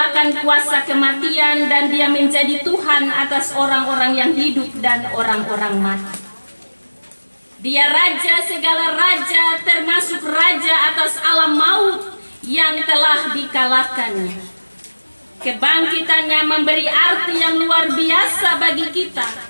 kuasa kematian dan dia menjadi Tuhan atas orang-orang yang hidup dan orang-orang mati. Dia raja segala raja, termasuk raja atas alam maut yang telah dikalahkannya. Kebangkitannya memberi arti yang luar biasa bagi kita,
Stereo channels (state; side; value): inverted; both; correlation -1.00